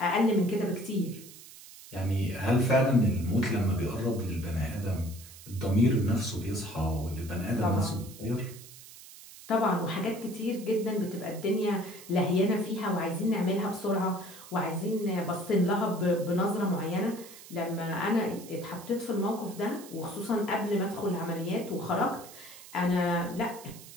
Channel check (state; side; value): noise; right; hiss, 17 dB below the sound